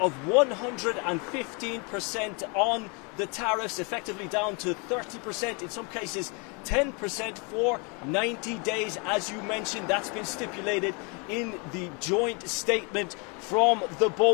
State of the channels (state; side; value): quieter; right; 32.9 dB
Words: 115% on the tariffs, effectively down to 30%, in some cases 10% for 90 days. As you mentioned, that's been stipulated in the joint statement from the